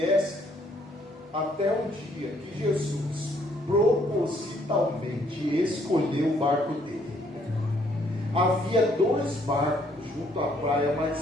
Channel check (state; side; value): normal; both; correlation 0.67